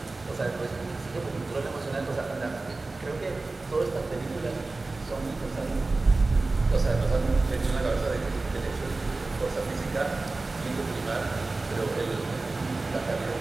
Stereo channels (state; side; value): quieter; left; 3.4 dB